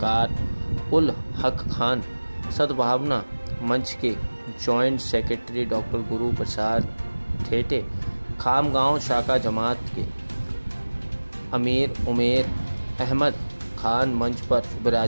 उल हक खान, सद्भावना मंच के joint secretary doctor Guru Prasad ठेटे, Khamgaon शाखा जमात के अमीर उमेर अहमद खान मंच पर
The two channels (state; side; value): inverted; both; correlation -1.00